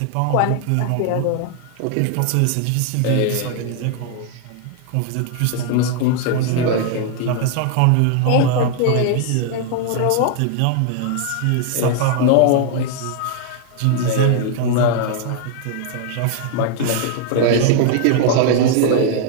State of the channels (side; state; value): both; different; correlation 0.00